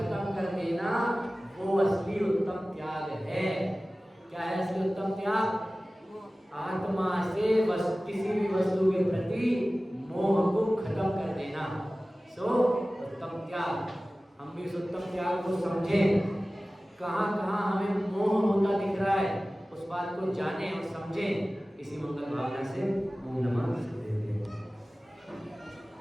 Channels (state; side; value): normal; both; correlation 0.97